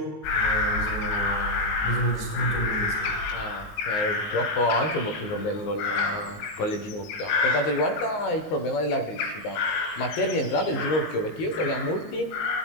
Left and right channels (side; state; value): right; late; 19 ms